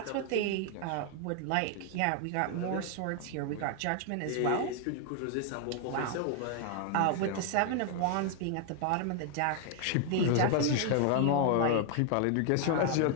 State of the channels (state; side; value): different; both; correlation 0.00